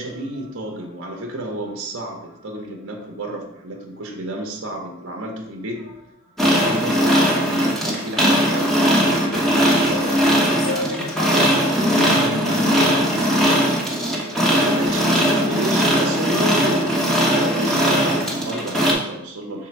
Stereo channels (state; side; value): normal; both; correlation 0.50